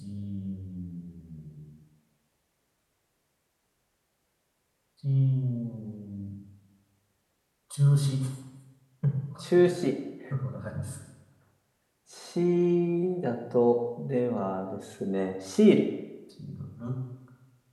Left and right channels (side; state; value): both; identical; correlation 1.00